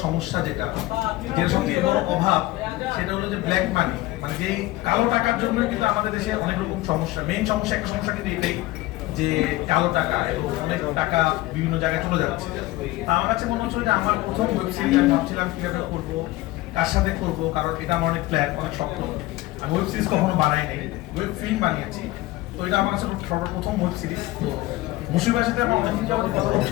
সমস্যা যেটা সবচেয়ে বড় অভাব সেটা হলো যে ব্ল্যাক মানি, মানে যে কালো টাকার জন্য কিন্তু আমাদের দেশে অনেক রকম সমস্যা। মেইন সমস্যা, একটা সমস্যা কিন্তু এটাই যে কালো টাকা এবং অনেক টাকা বিভিন্ন জায়গায় চলে যাচ্ছে। তা আমার কাছে মনে হচ্ছে যে আমার প্রথম ওয়েব সিরিজ আমি ভাবছিলাম কিভাবে করবো, কার সাথে করবো, কারণ এটা আমার অনেক প্ল্যান, অনেক স্বপ্ন। আমি ওয়েব সিরিজ কখনো বানাই নাই, ওয়েব ফিল্ম বানিয়েছি। তো এটা আমার কাছে সর্বপ্রথম ওয়েব সিরিজ। তো মুশফিকের সাথে আমার অনেকদিন যাবত কথা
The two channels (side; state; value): right; quieter; 18.3 dB